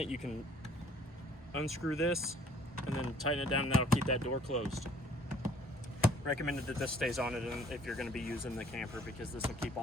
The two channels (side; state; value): both; normal; correlation 0.58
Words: you can unscrew this and then tighten it down, and that'll keep that door closed. Recommended that this stays on it if you're going to be using the camper, because this will keep